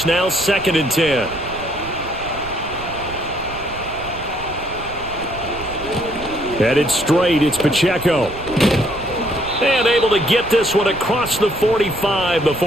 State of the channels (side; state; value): right; noise; rumble, 14 dB below the sound